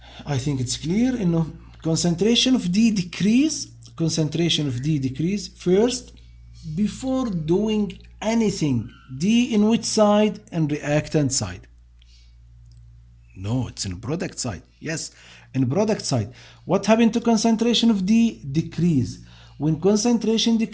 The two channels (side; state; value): both; identical; correlation 1.00